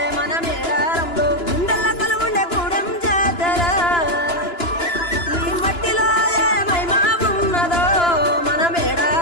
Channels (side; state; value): right; late; 2.9 ms